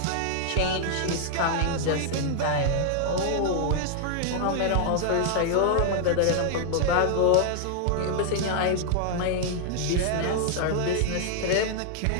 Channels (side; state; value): both; different; correlation -0.01